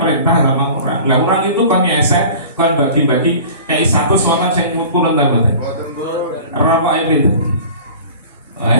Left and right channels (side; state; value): both; inverted; correlation -0.41